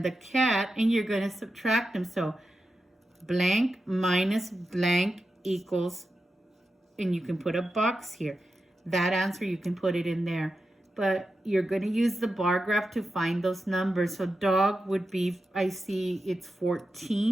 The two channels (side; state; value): both; normal; correlation 0.90